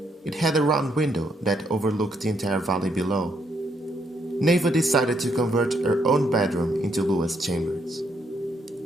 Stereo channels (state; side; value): normal; both; correlation 0.74